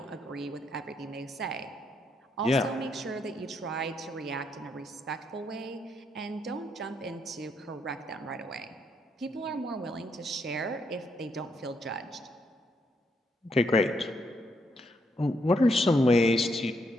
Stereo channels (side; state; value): both; normal; correlation 0.76